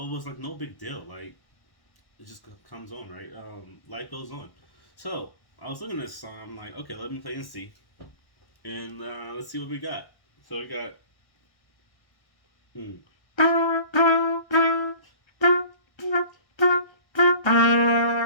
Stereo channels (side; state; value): right; late; 1.1 ms